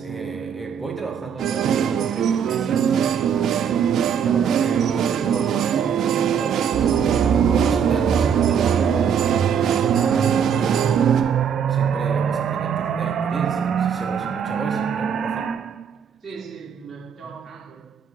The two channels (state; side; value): quieter; left; 7.6 dB